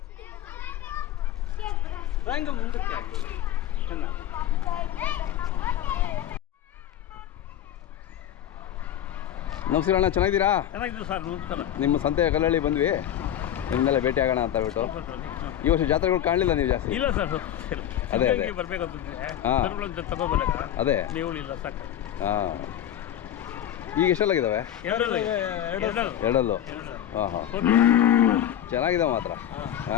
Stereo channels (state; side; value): quieter; right; 11.1 dB